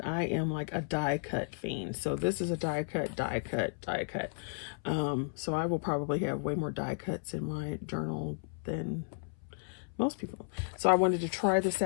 I am like a die cut fiend. So this is a die cut. So I will probably have way more die cuts in my journal than most people. So I wanted to try this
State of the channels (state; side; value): silent; right; 55 dB below the other